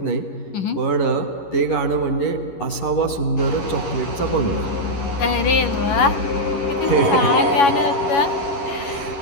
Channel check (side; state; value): right; late; 11 ms